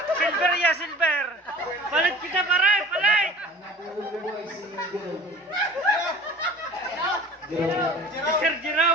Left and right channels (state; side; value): normal; both; correlation 0.41